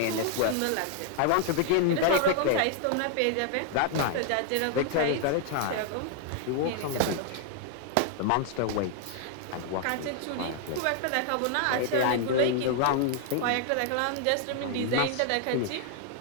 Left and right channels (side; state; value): both; different; correlation 0.00